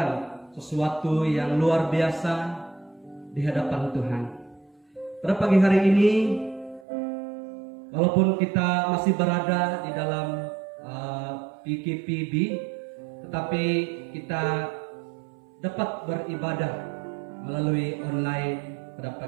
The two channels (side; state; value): left; drops out; at 6.9 s